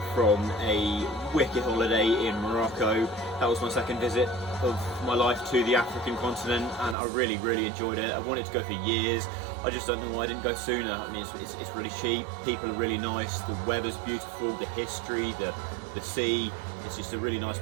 from a wicked holiday in Morocco. That was my second visit of my life to the African continent, and I really enjoyed it. I wanted to go for years. I just don't know why I didn't go sooner. I mean, it's really cheap, people are really nice, the weather's beautiful, the history, the sea. It's just a really nice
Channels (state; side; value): drops out; left; at 7.0 s